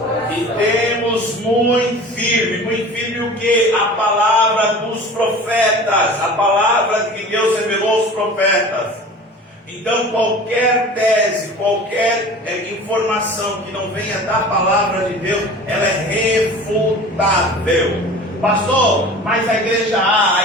E temos muito firme o que? A palavra dos profetas, a palavra que Deus revelou aos profetas. Então qualquer tese, qualquer informação que não venha da palavra de Deus, ela é refutável. Pastor, mas a igreja A,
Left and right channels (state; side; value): normal; both; correlation 0.39